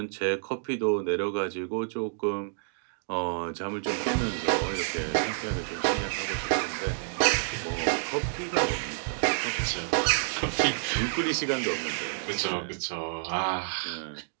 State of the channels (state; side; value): silent; left; digital silence